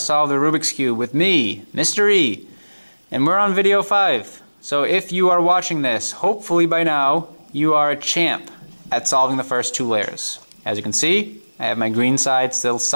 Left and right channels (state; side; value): inverted; both; correlation -1.00